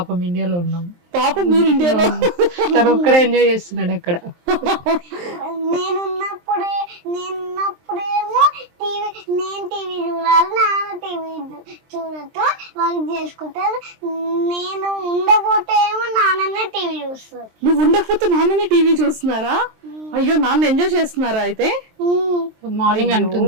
ఇండియాలో ఉన్నాం. పాపం మీరు ఇండియాలో. ఒక్కడే ఎంజాయ్ చేస్తున్నాడు అక్కడ. నేనున్నప్పుడేమో నేను టీవీ చూడాలి, నాన్న టీవీ చూడటం వర్క్ చేసుకుంటారు. నేను ఉండకపోతే ఏమో నాన్ననే టీవీ చూస్తారు. నువ్వు ఉండకపోతే నాన్ననే టీవీ చూస్తున్నారా? అయ్యో, నాన్న ఎంజాయ్ చేస్తున్నారా అయితే? మార్నింగ్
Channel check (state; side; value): late; left; 23 ms